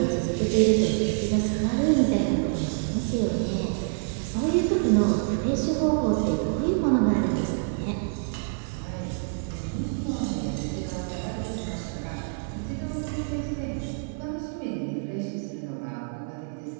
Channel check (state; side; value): silent; left; 60 dB below the other